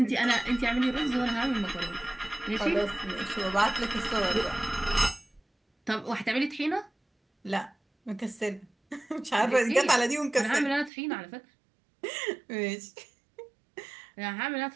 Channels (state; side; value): drops out; left; at 10.9 s